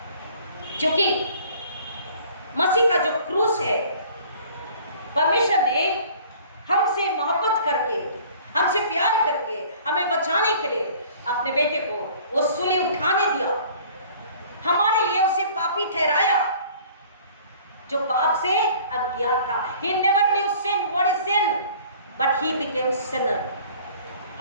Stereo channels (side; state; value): both; inverted; correlation -0.50